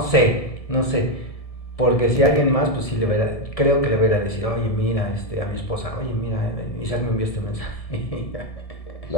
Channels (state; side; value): late; right; 1.7 ms